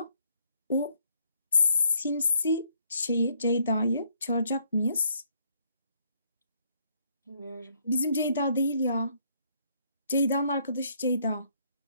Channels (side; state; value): both; inverted; correlation -0.69